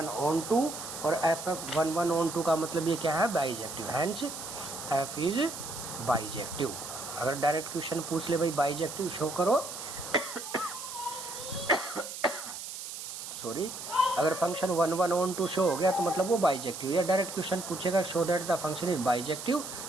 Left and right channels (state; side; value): noise; right; hiss, 9 dB below the sound